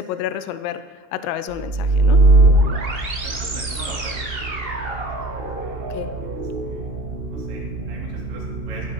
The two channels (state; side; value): late; left; 2.8 ms